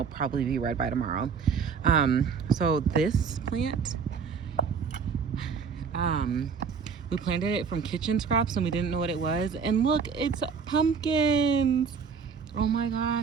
probably be red by tomorrow. So this plant, we planted it from kitchen scraps and we didn't know what it was. And look, it's pumpkins. Oh my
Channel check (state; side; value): quieter; left; 6.0 dB